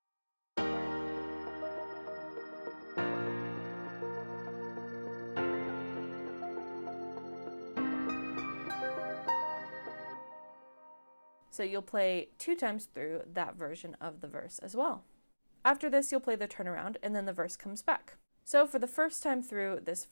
So you'll play 2 times through that version of the verse as well. After this, you'll play the turnaround, and then the verse comes back. So for the first time through this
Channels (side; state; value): both; inverted; correlation -1.00